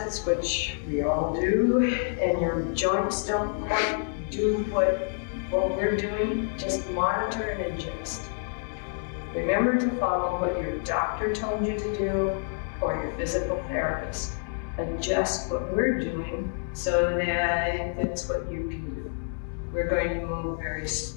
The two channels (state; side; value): silent; right; 59 dB below the other